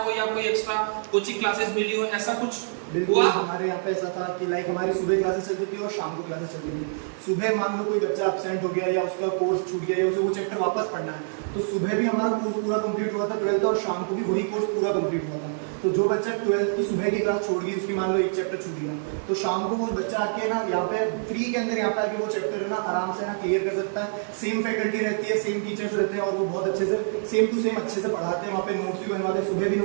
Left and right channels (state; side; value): silent; left; 61 dB below the other